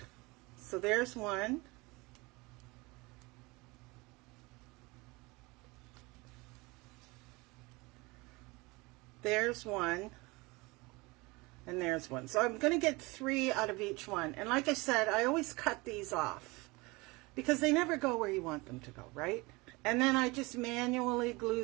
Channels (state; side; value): quieter; left; 24.3 dB